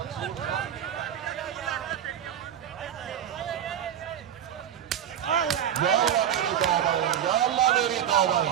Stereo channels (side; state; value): left; quieter; 9.8 dB